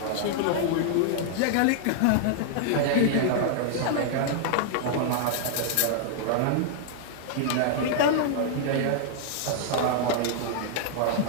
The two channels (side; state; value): both; different; correlation -0.01